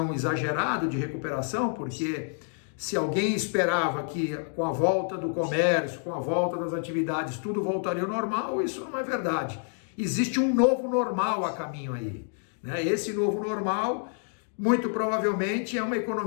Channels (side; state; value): right; silent; 59 dB below the other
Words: exagerado de recuperação, porque se alguém esperava que com a volta do comércio, com a volta das atividades, tudo voltaria ao normal, isso não é verdade. Existe um novo normal a caminho aí, né? Esse novo normal, muito provavelmente, é uma